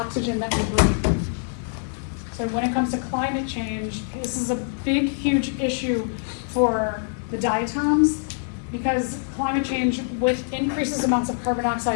that we breathe. So when it comes to climate change, this is a big, huge issue for the diatoms, because climate change with increases amounts of carbon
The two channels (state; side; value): silent; right; digital silence